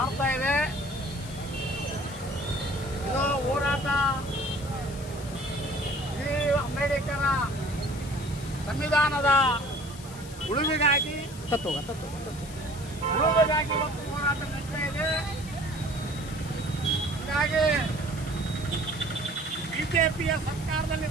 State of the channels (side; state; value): left; noise; hiss, 16 dB below the sound